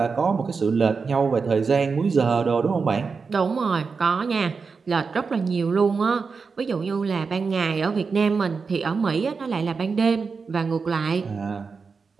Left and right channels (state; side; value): quieter; left; 5.0 dB